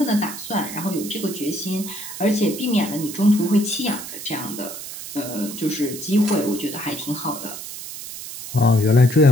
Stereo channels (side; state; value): right; noise; hiss, 10 dB below the sound